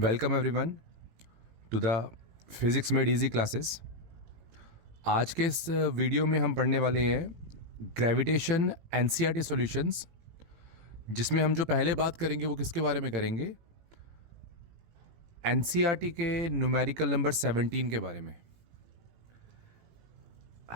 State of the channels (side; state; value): left; late; 18 ms